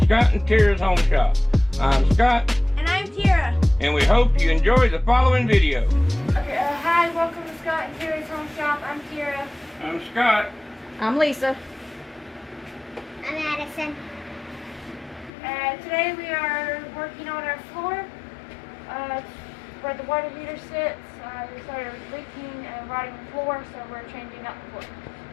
Scott and Tira's Home Shop. I'm Scott. And I'm Tira. And we hope you enjoy the following video. Okay, hi, welcome to Scott and Tira's Home Shop. I'm Tira. I'm Scott. I'm Lisa. I'm Addison. Today we are working on our floor where the water heater sits. We started leaking and rotting the floor, so we're changing out the floor.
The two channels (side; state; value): right; drops out; at 15.3 s